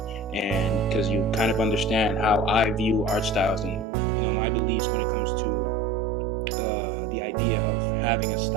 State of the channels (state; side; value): drops out; left; at 3.9 s